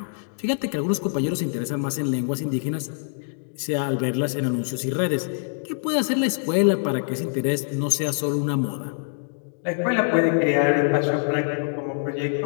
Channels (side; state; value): right; silent; digital silence